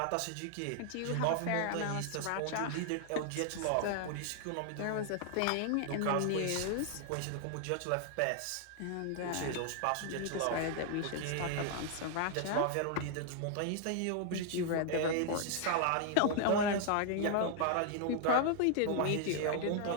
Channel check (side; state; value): both; different; correlation 0.00